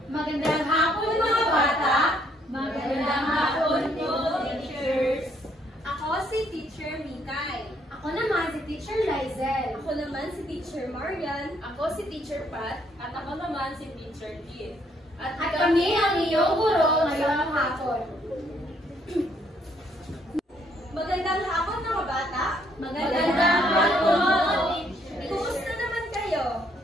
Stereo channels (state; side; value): normal; both; correlation 0.69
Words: Magandang hapon mga bata! Magandang hapon po, teachers! Ako si Teacher Mikay. Ako naman si Teacher Lizel. Ako naman si Teacher Marian. Ako si Teacher Pat. At ako naman si Teacher Kit. At kami ang iyong guro ngayong hapon. Magandang hapon mga bata! Magandang hapon! Kumusta naman kayo?